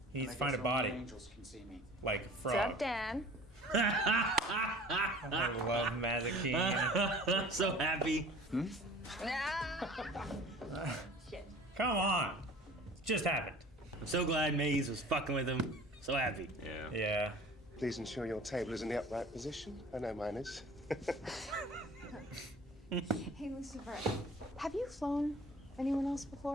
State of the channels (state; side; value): normal; both; correlation 0.45